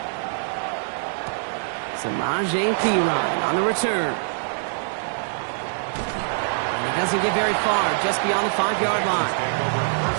Samaje Perine on the return. And he doesn't get very far, just beyond the 5-yard line.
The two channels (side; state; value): left; silent; digital silence